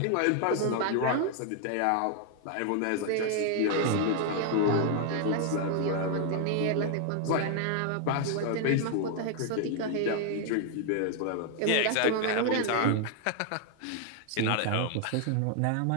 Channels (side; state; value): both; different; correlation 0.00